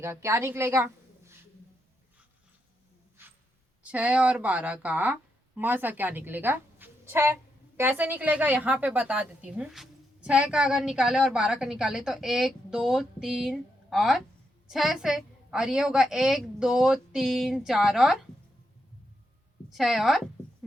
क्या निकलेगा, 6 और 12 का मसा क्या निकलेगा 6। कैसे निकलेगा यहाँ पे बता देती हूँ। 6 का अगर निकाले और 12 का निकाले तो 1 2 3 और 6 से, और ये होगा 1 2 3 4 और 6 और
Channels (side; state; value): both; normal; correlation 0.82